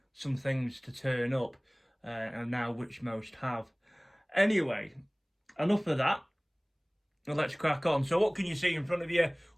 some things to turn up, and now which most have. Anyway, enough of that. Let's crack on. So what can you see in front of you?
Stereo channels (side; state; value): both; identical; correlation 1.00